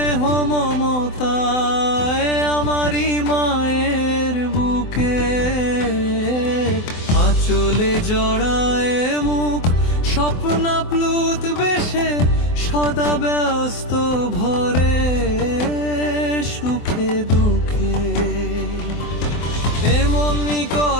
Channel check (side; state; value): right; late; 24 ms